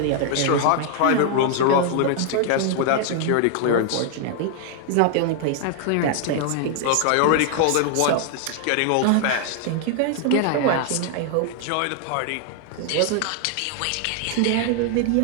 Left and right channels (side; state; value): both; different; correlation 0.00